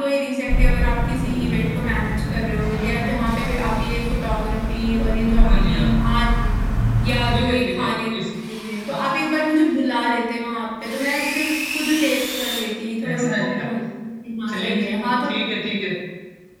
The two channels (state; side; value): identical; both; correlation 1.00